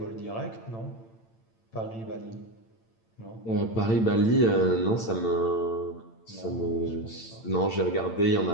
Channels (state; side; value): late; right; 8.9 ms